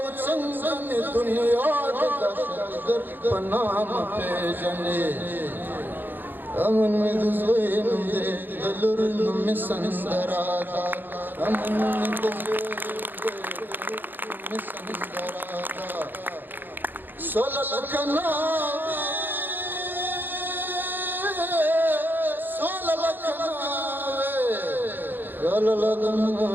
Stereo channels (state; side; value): late; left; 0.092 ms